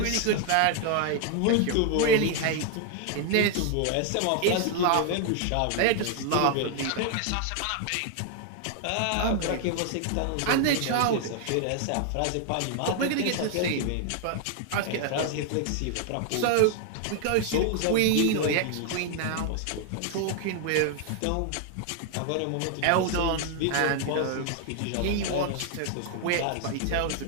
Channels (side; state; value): both; different; correlation 0.00